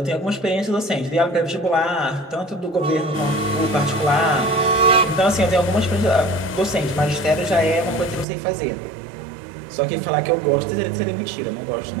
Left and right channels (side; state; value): left; drops out; at 8.2 s